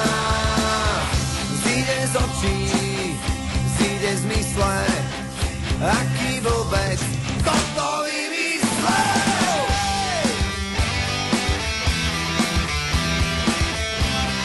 Zíde z očí, zíde z mysle, aký vôbec toto vymyslel.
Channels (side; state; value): both; identical; correlation 1.00